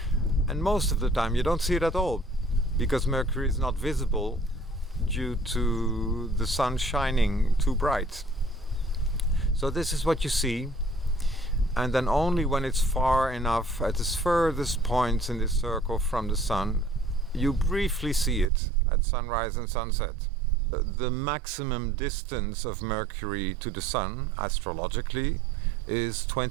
And most of the time you don't see it at all, because Mercury is not visible due to the sun shining too bright. So this is what you see. And then only when it's far enough, at its furthest points in this circle from the sun, you briefly see it at sunrise and sunset. The maximum distance of Mercury to the Sun, astrologically, is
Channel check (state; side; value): drops out; left; at 18.5 s